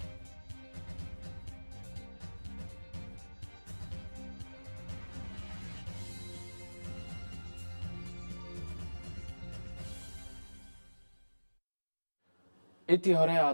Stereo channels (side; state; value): both; inverted; correlation -1.00